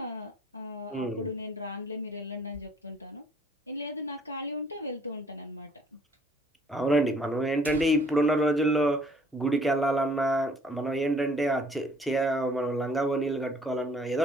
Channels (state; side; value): normal; both; correlation 0.59